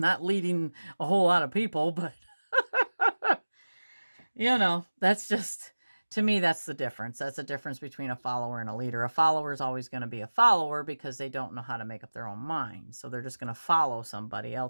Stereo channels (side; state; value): both; inverted; correlation -1.00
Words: leading a whole lot of people, but that's just, to me, that's the difference. That's the difference between a follower and a leader. A follower is always going to be a follower because they don't know how to make up their own mind. So they're just going to follow somebody